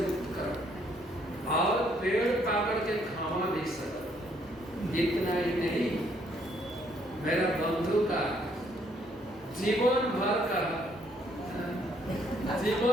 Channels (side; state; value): both; normal; correlation 0.68